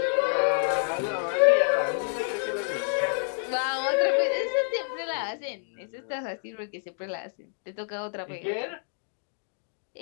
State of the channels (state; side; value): silent; right; 59 dB below the other